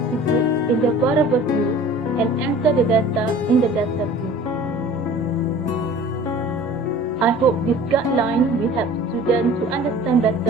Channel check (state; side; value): noise; right; rumble, 29 dB below the sound